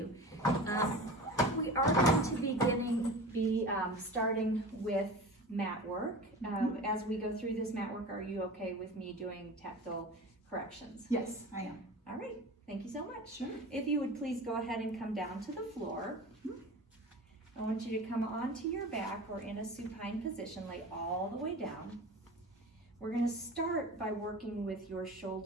We are going to be starting with mat work. As we go through this mat work, are you okay with me doing tactile corrections? Yes, I am. All right, thank you so much. Sure. If you would please go ahead and come down to the floor. I want you to come onto your back or in a supine position, lay all the way down. We're going to start by working with your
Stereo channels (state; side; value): normal; both; correlation 0.35